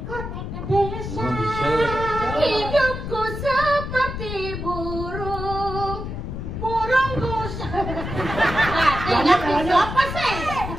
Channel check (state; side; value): noise; left; rumble, 6 dB below the sound